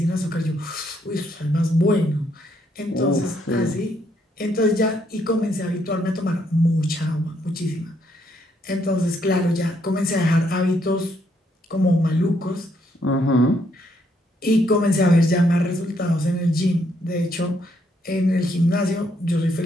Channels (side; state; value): both; normal; correlation 0.73